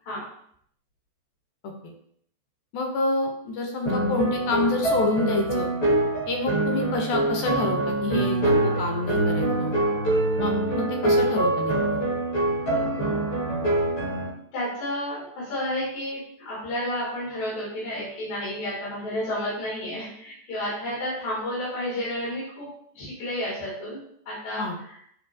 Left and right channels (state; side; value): late; right; 14 ms